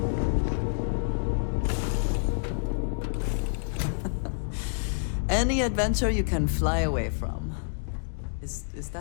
Any adventure you can fly away from. Is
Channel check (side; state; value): right; silent; digital silence